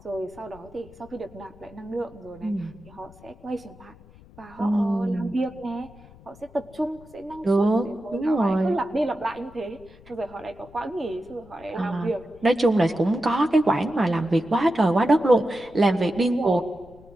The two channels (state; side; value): noise; left; rumble, 23 dB below the sound